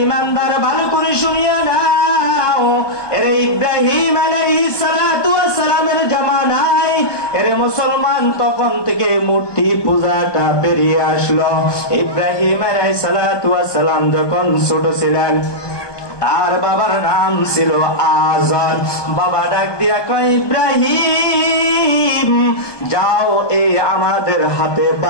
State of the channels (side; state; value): right; late; 1.2 ms